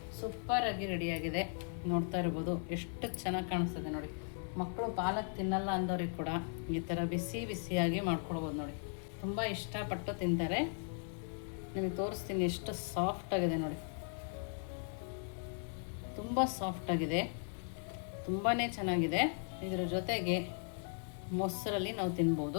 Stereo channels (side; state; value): right; silent; 53 dB below the other